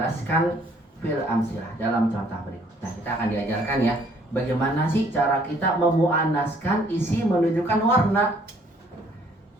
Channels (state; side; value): normal; both; correlation 0.62